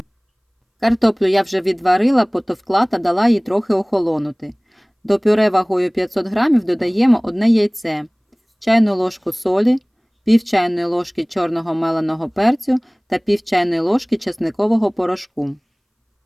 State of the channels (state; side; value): identical; both; correlation 1.00